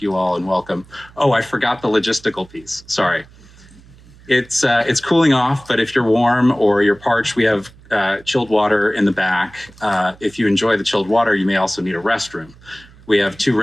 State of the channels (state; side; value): noise; right; hum, 24 dB below the sound